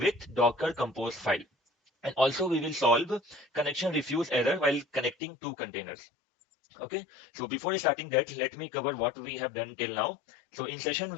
Docker Compose file. And also we will solve connection refuse error while connecting two containers. Okay, so before starting that, let me cover what we have done till now. So in session,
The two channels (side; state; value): right; drops out; at 5.2 s